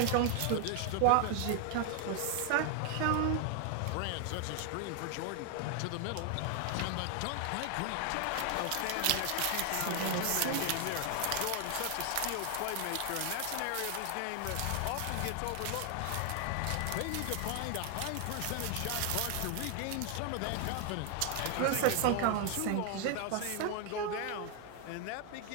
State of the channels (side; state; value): both; different; correlation 0.00